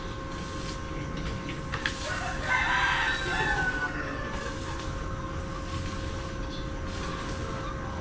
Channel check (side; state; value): both; identical; correlation 1.00